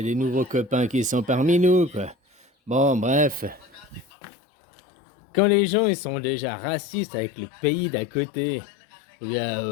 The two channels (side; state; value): right; drops out; at 4.0 s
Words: des nouveaux copains qui sont parmi nous, quoi. Bon, bref. Quand les gens ils sont déjà racistes avec le pays d'à côté, ou